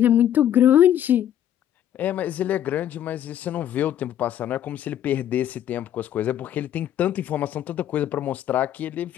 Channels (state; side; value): quieter; right; 10.9 dB